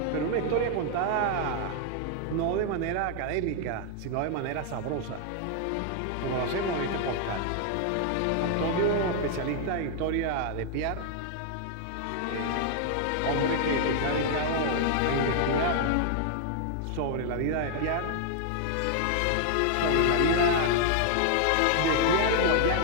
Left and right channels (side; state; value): both; different; correlation 0.00